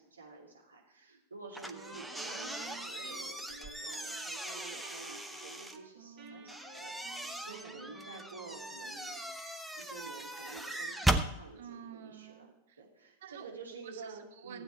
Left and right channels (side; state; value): both; normal; correlation 0.63